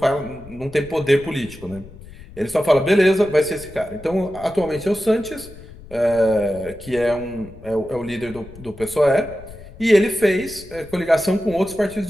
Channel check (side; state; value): left; noise; rumble, 18 dB below the sound